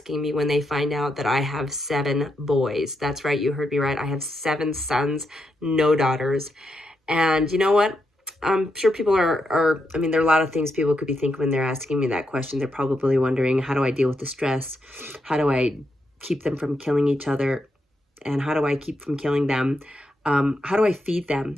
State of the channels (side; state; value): both; normal; correlation 0.82